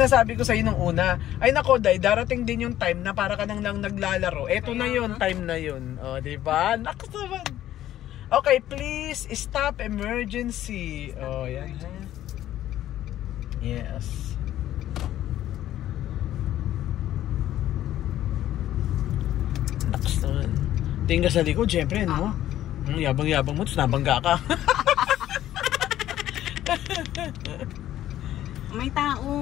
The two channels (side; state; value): right; quieter; 12.8 dB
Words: ko sa'yo nung una. Ay nako, Day, darating din yung time na para ka nang naglalaro. Eto na yun, time na yun. O, diba? Nakas naman. Okay, please, stop emergency. O, yan. Yes. Nakas naman. Tingin ka sa likod, syempre, no? Yabang-yabang mo, tapos nabangga ka. May